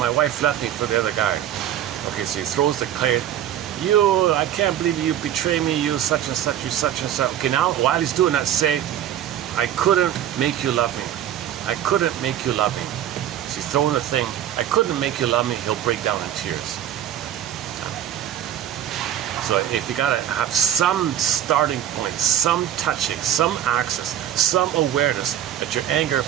wife left me for the other guy. Okay, so he throws the clay. You, I can't believe you betray me, you such and such, you such and such. Okay, now while he's doing that, say, I couldn't make you love me. I couldn't make you love me. So he's throwing the thing, I couldn't make you love me, he'll break down in tears. So if you gotta have some starting point, some touching, some access, some awareness that your anger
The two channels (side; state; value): left; quieter; 10.9 dB